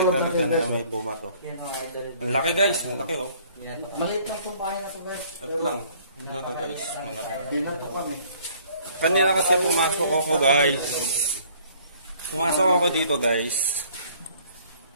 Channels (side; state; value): both; inverted; correlation -0.58